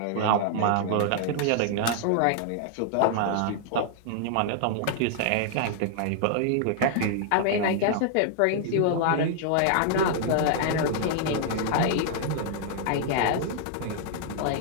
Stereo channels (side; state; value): both; different; correlation -0.01